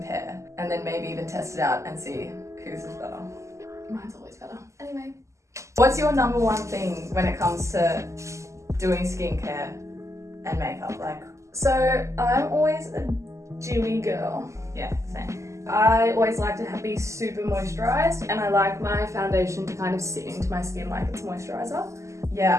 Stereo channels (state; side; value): late; left; 0.14 ms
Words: And then maybe even test it out and see whose is better. Mine's always better. Anyway. What's your number one thing when it comes to doing skincare and makeup? Like, so I'm always a dewy girl. yeah, same. I always like to be super moisturized, and I like my foundation to kind of sit into my skin like it's moisturizer.